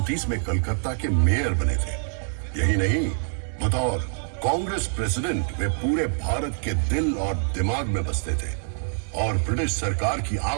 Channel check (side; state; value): left; silent; 62 dB below the other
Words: में कलकत्ता के मेयर बने थे। यही नहीं, बतौर कांग्रेस प्रेसिडेंट वे पूरे भारत के दिल और दिमाग में बसते थे और ब्रिटिश सरकार की